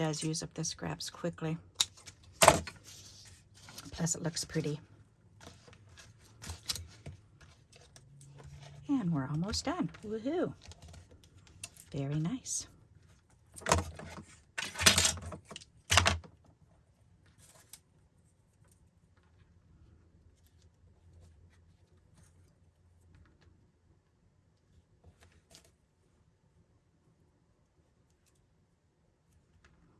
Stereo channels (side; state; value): both; identical; correlation 1.00